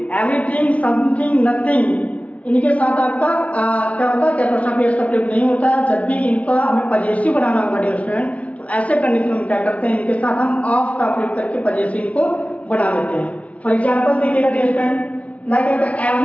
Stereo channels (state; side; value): late; right; 0.066 ms